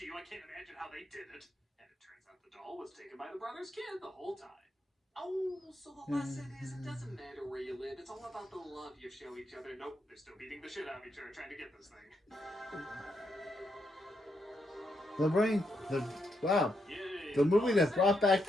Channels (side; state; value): both; normal; correlation 0.80